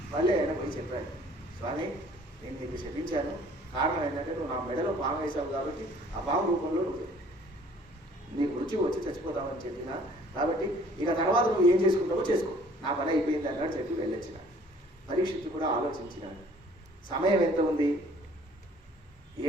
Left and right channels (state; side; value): normal; both; correlation 0.56